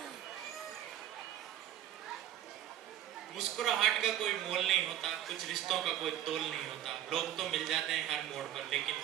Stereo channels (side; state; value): left; quieter; 11.6 dB